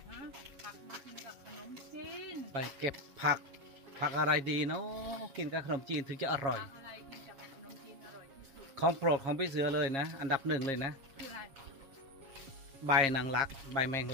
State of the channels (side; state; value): left; late; 7.4 ms